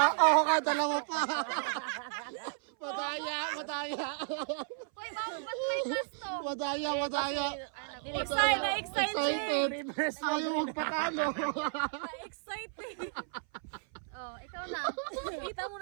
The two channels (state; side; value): silent; left; 55 dB below the other